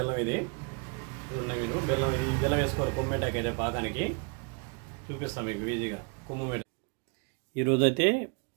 ఇది ఉన్నాయి, మీరు బెల్లం ఈ బెల్లం వేసుకోవాలి। కొమ్ము మిఠాయికి అయితే పాకానికి చూపిస్తాం మీకు ఈజీగా కొమ్ము మిఠాయి। ఈ రోజు అయితే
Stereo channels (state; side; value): quieter; left; 34.5 dB